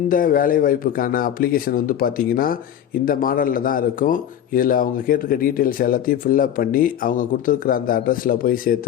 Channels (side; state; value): right; quieter; 10.1 dB